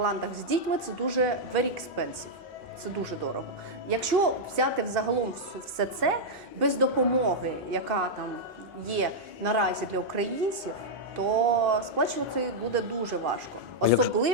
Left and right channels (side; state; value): both; normal; correlation -0.05